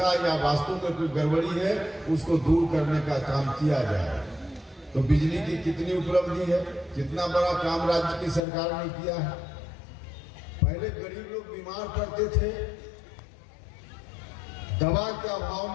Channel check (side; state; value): right; drops out; at 8.4 s